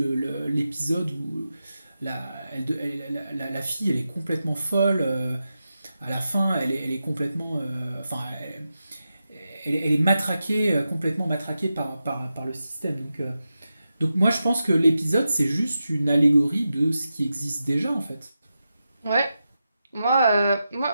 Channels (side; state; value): both; inverted; correlation -0.90